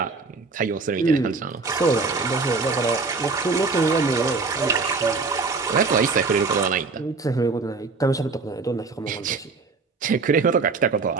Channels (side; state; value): left; quieter; 4.3 dB